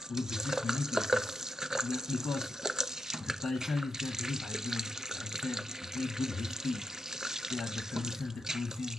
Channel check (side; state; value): both; normal; correlation 0.83